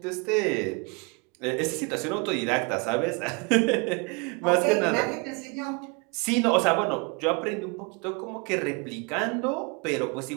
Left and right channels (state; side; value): quieter; left; 31.2 dB